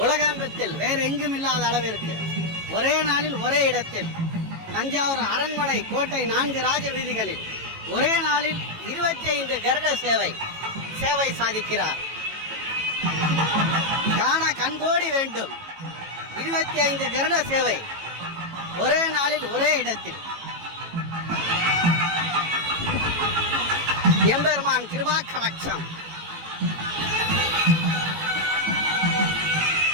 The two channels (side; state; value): left; late; 18 ms